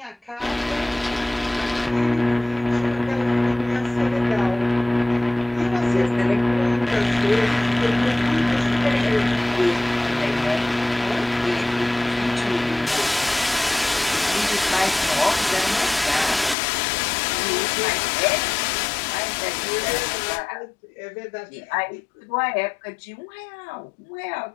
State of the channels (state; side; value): drops out; right; at 16.6 s